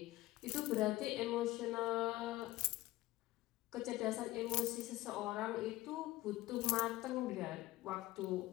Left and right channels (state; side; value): quieter; right; 17.5 dB